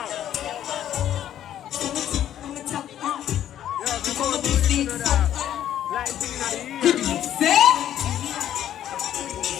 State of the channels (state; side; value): quieter; right; 11.2 dB